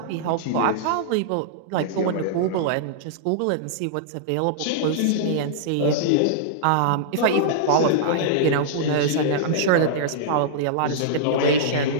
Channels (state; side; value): different; both; correlation -0.02